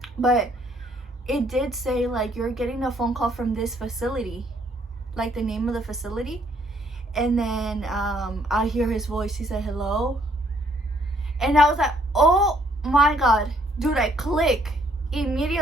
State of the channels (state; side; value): normal; both; correlation 0.66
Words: But it did say like, you're getting a phone call from this facility, like the name of the facility. And then I hear his voice. He said hello, and I was like, oh my god, dude. I click